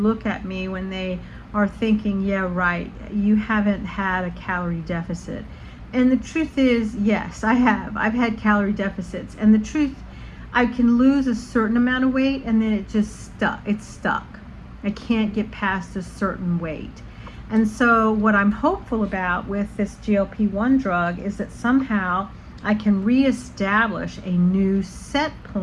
at me when they are thinking, yeah, right, you haven't had a calorie deficit. And the truth is, yes, I have. I've had calorie deficits. And the truth, I can lose a certain amount of weight and then it's stuck. I can't get past a certain weight. And so what I'm hopeful about with this GLP-1 drug is that somehow I can reestablish a new set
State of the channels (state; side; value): identical; both; correlation 1.00